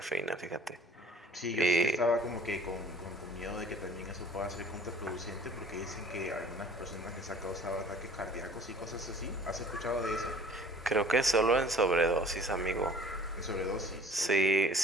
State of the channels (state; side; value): normal; both; correlation 0.49